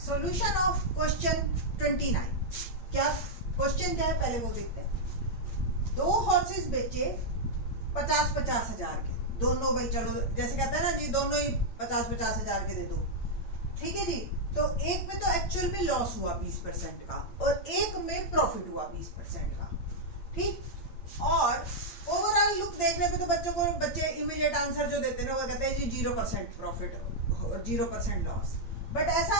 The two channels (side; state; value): right; late; 8.9 ms